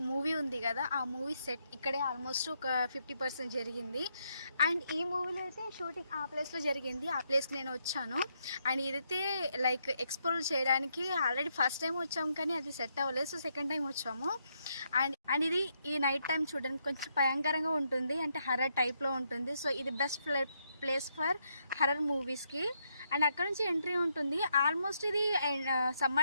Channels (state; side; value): inverted; both; correlation -0.78